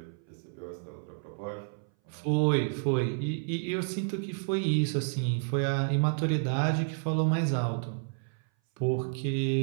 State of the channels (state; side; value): silent; left; 58 dB below the other